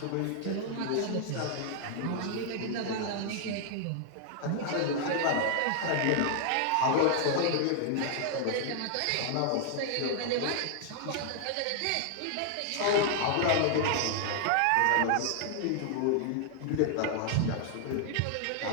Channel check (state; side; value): different; both; correlation 0.00